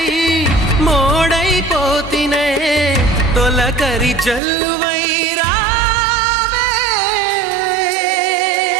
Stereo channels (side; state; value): left; drops out; at 4.4 s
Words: మోడైపోతినే, తొలకరి జల్లువై రావే.